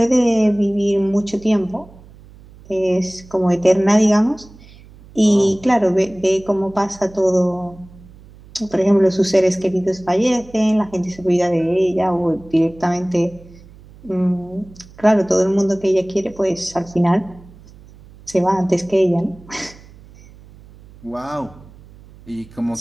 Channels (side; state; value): right; noise; hum, 22 dB below the sound